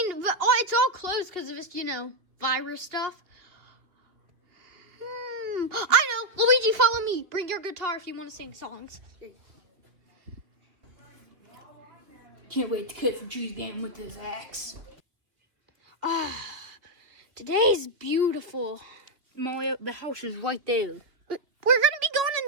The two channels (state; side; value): late; left; 3.1 ms